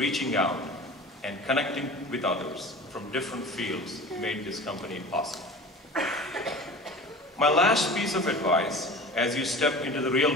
out and connecting with others from different fields made this company possible. My last piece of advice as you step into the real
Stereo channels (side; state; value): both; normal; correlation 0.38